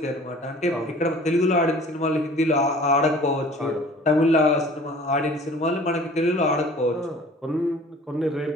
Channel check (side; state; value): both; normal; correlation 0.47